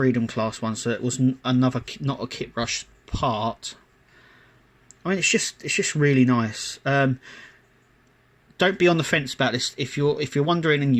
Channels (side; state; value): both; identical; correlation 1.00